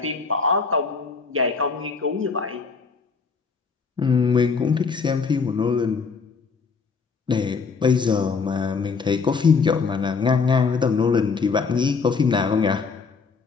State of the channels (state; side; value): quieter; right; 5.1 dB